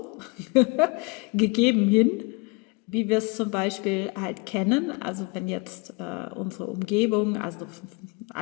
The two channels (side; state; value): right; quieter; 28.7 dB